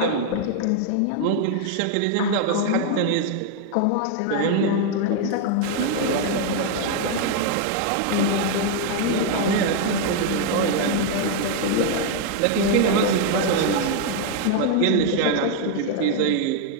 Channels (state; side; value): different; both; correlation 0.00